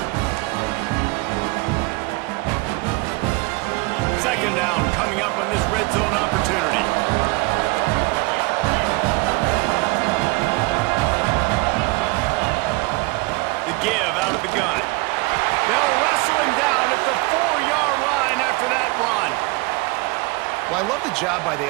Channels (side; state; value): left; quieter; 25.5 dB